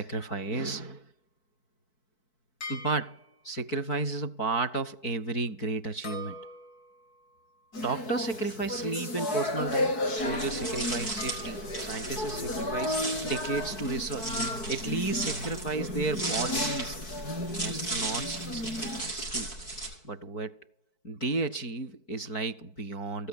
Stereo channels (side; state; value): right; late; 4.6 ms